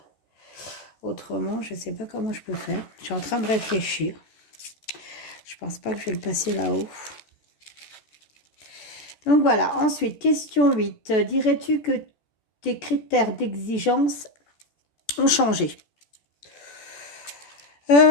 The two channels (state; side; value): late; right; 14 ms